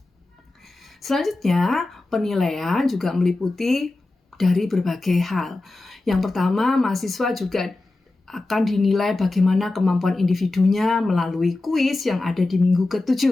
Selanjutnya, penilaian juga meliputi dari berbagai hal. Yang pertama, mahasiswa juga akan dinilai bagaimana kemampuan individunya melalui kuis yang ada di minggu ke-7.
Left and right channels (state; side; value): quieter; right; 3.0 dB